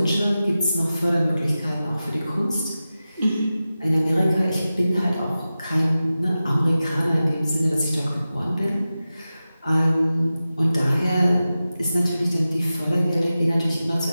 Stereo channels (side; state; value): both; inverted; correlation -0.94